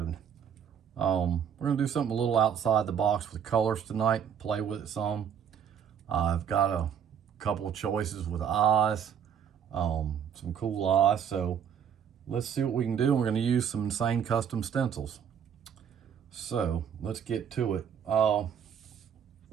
We're gonna do something a little outside the box with colors tonight, play with it some. I've got a couple of choices with eyes, some cool eyes, so let's see what we can do. We're going to use some insane custom stencils. So let's get to it. What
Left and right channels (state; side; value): quieter; left; 8.1 dB